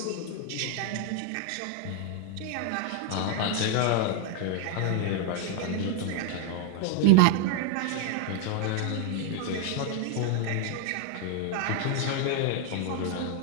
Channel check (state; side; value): different; both; correlation 0.00